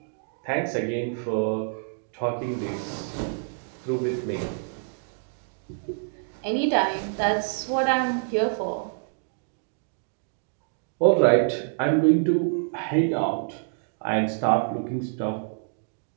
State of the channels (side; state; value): left; silent; digital silence